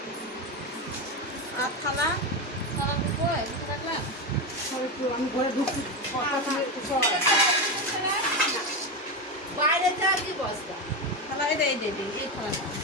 আর থালা রাখলাম, আমি ঘরে ঢুকছি। বাইরে যা কি বস্তা থালা, এটা এই দেবে, এই থালাটা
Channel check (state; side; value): normal; both; correlation 0.14